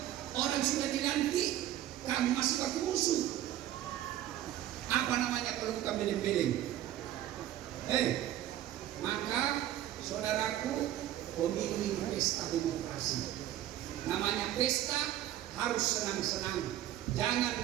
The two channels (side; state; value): left; quieter; 12.9 dB